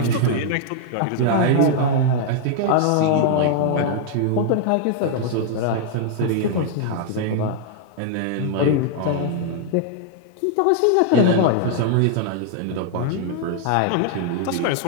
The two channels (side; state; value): both; different; correlation 0.00